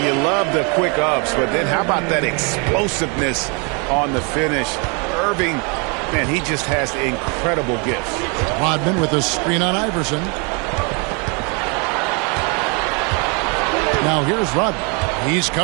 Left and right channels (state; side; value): quieter; left; 33.5 dB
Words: you love the quick ups, but then how about that explosiveness on the finish? Irving, man, he just has incredible gifts. Rodman with a screen on Iverson. Now here's Rodman. He's